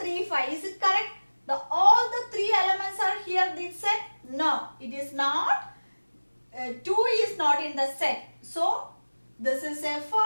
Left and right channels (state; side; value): inverted; both; correlation -1.00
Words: 5. Is it correct? All the three elements are here in this set? No, it is not. 2 is not in the set. So this is a